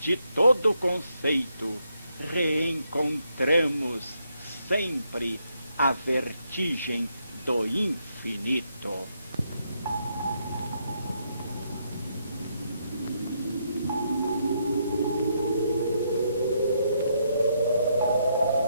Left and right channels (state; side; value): inverted; both; correlation -0.76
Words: todo conceito, reencontramos sempre a vertigem do infinito.